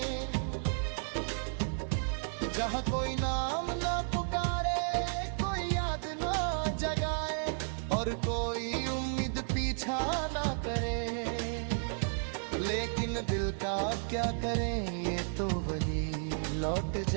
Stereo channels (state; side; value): silent; left; digital silence